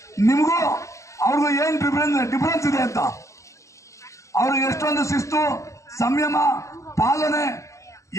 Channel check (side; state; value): right; late; 0.15 ms